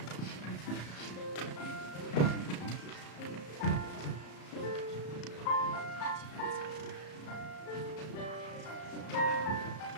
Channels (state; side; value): late; right; 34 ms